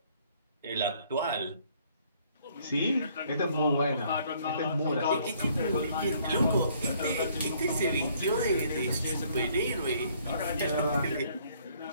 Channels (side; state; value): both; inverted; correlation -0.63